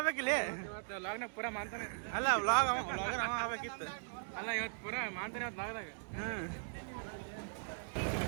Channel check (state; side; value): silent; left; digital silence